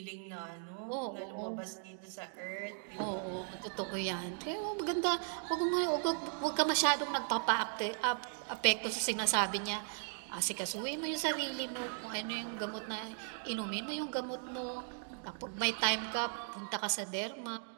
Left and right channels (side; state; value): left; silent; 53 dB below the other